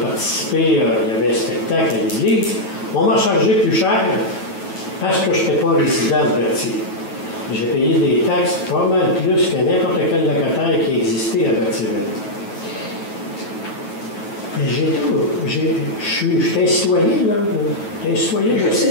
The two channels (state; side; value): late; right; 9.3 ms